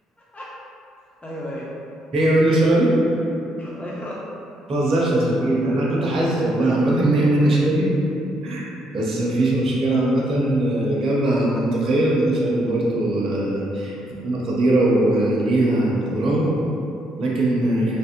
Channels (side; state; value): both; normal; correlation 0.75